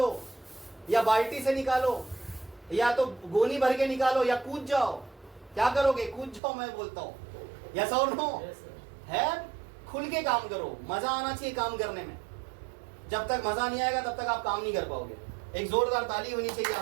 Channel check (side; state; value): left; drops out; at 6.4 s